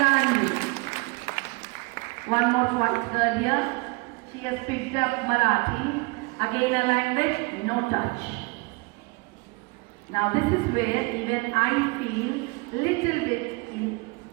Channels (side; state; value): left; quieter; 27.3 dB